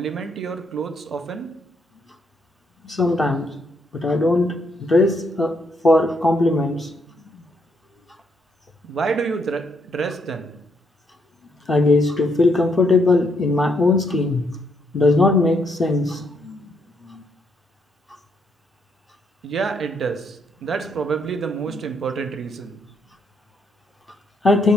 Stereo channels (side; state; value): both; normal; correlation 0.75